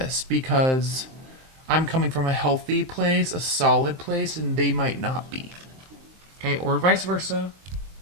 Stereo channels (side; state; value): left; late; 23 ms